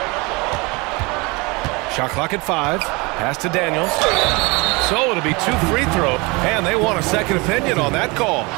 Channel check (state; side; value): quieter; left; 26.2 dB